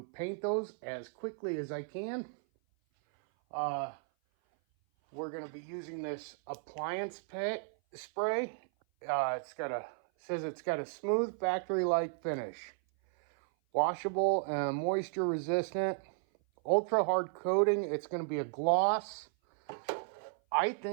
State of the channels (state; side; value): silent; left; 55 dB below the other